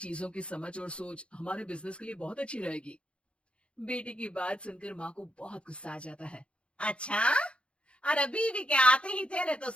की समझ और सोच हमारे बिजनेस के लिए बहुत अच्छी रहेगी। बेटी की बात सुनकर माँ को बहुत गुस्सा आ जाता है। अच्छा। अरे बीवी के आते ही तेरे तो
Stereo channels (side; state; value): right; late; 0.058 ms